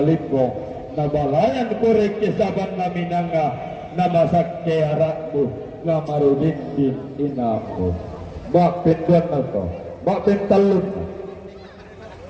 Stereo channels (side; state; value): both; identical; correlation 1.00